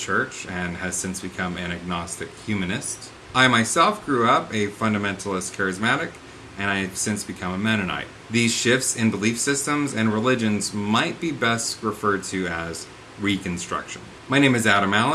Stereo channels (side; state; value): both; identical; correlation 1.00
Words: church and has since become an agnostic humanist. I myself grew up a fundamentalist charismatic, and I've since become a Mennonite. These shifts in belief systems and religions might be best referred to as Reconstruction. My name is Adam